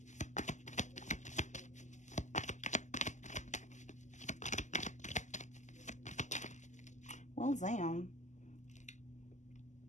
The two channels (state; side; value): late; right; 0.34 ms